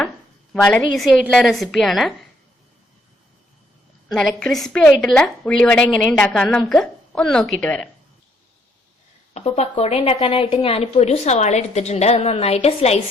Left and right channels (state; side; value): normal; both; correlation 0.70